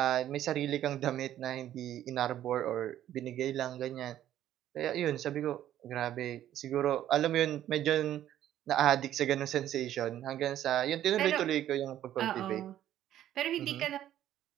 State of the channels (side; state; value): left; quieter; 12.0 dB